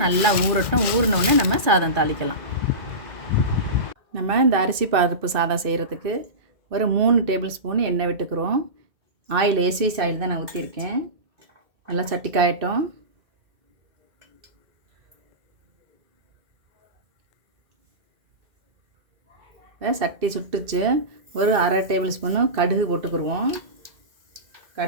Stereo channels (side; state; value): left; late; 2.2 ms